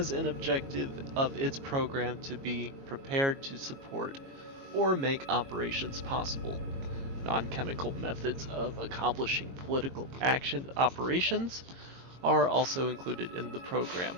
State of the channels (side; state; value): left; late; 22 ms